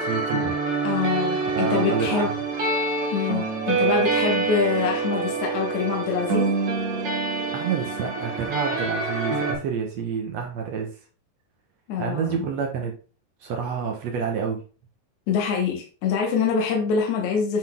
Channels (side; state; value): both; normal; correlation 0.01